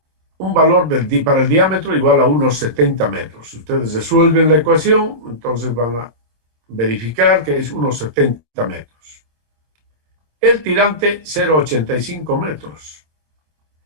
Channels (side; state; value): left; late; 26 ms